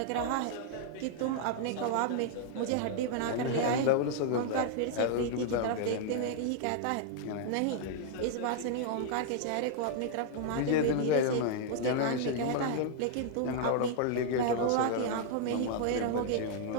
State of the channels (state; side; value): different; both; correlation -0.01